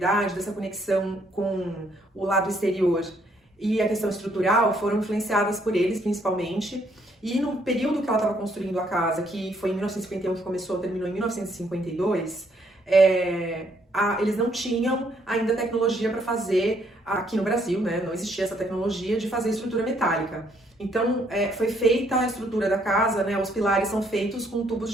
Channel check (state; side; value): normal; both; correlation 0.69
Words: dessa conexão com o lado exterior e a questão estrutural foram influenciadas por eles, principalmente. E no período que ela estava construindo a casa, que foi em 1951 que começou, terminou em 1952, eles não tinham ainda tecnologia para fazer, aqui no Brasil, né? Não existia essa tecnologia de fazer estrutura metálica. Então, foi feita a estrutura da casa, né? Os pilares são feitos com tubos